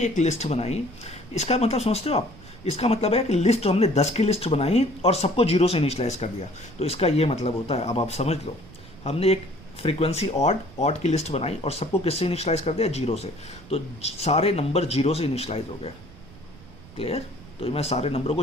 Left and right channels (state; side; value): noise; right; rumble, 20 dB below the sound